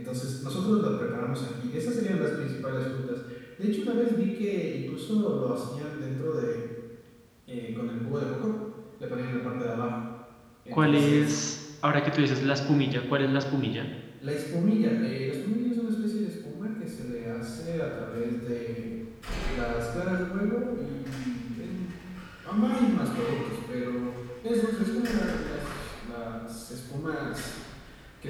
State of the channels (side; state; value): both; identical; correlation 1.00